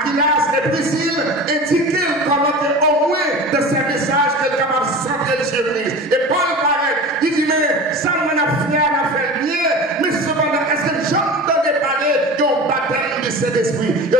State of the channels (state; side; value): normal; both; correlation 0.33